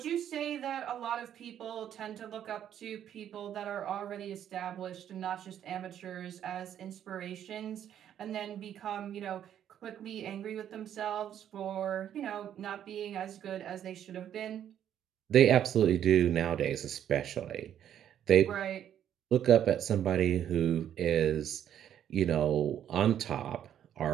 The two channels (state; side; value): quieter; left; 10.1 dB